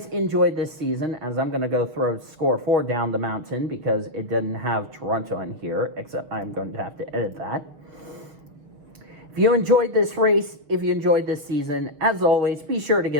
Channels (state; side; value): late; left; 6.8 ms